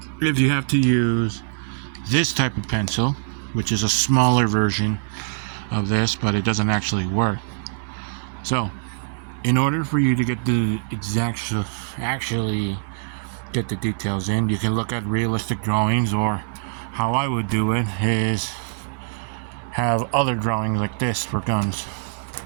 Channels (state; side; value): silent; left; 60 dB below the other